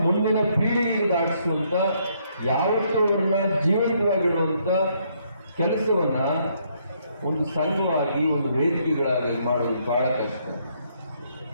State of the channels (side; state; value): both; inverted; correlation -0.71